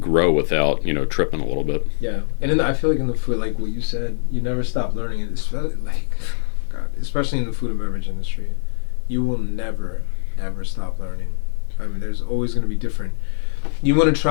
without tripping a little bit. Yeah, and I feel like in the food, like what you said, you never stop learning. It's like, God, especially in the food and beverage industry, you will never ever stop learning. I mean, there's always going to be different. You want to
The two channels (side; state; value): right; silent; 64 dB below the other